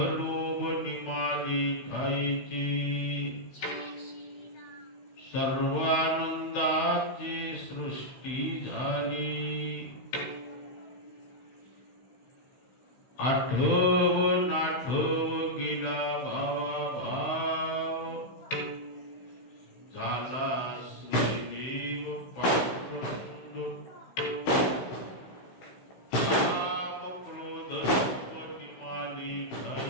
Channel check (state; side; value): late; right; 16 ms